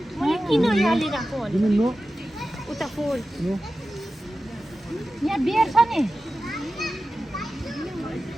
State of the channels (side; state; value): both; normal; correlation 0.93